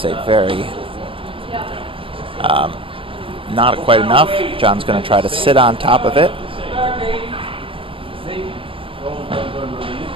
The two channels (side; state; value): left; late; 0.26 ms